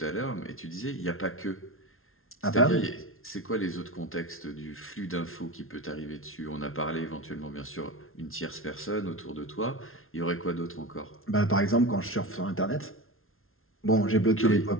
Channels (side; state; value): right; late; 0.61 ms